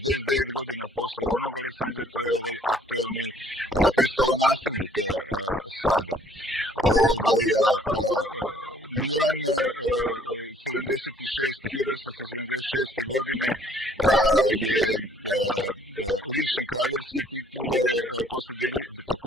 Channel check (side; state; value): both; normal; correlation 0.59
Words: godina posle onog Aleksandra, to je ovaj aktuelni prestolonasljednik sada. Milan 1876. godine je lišen kraljevske titule posle